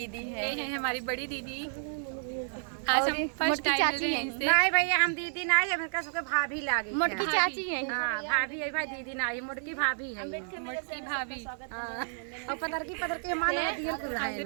ये है, है हमारी बड़ी दीदी। आज हम फर्स्ट मोटकी टाइम चाची मिल रहे हैं। हैं इनसे। नहीं भैया हम दीदी ना है, मेरे सबके भाभी लागे। मोटकी चाची है। हाँ भाभी है भाई, दीदी ना है, मोटकी भाभी है। मोटकी भाभी हाँ, और पतर की माने दियल कुल है।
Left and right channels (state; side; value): silent; left; digital silence